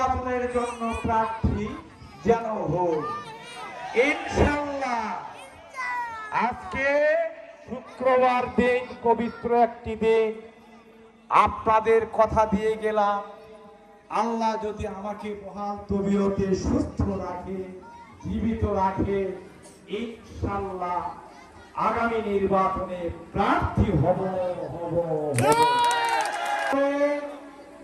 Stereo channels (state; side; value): identical; both; correlation 1.00